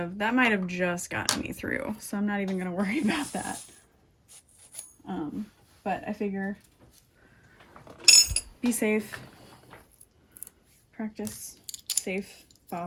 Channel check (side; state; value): both; identical; correlation 1.00